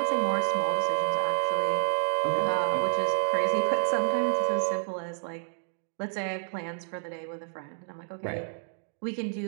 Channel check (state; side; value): silent; left; digital silence